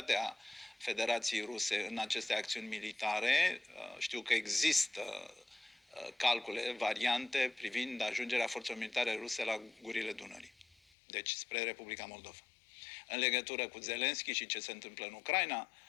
Federației Ruse în aceste acțiuni militare, știu că există calcule, variante privind ajungerea forțelor militare ruse la gurile Dunării, deci spre Republica Moldova. În legătură cu Zelenski și ce se întâmplă în Ucraina,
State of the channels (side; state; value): right; drops out; at 10.8 s